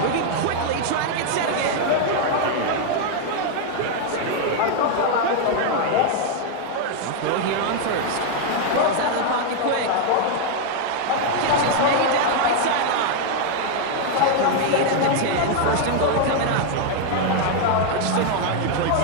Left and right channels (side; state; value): both; different; correlation 0.00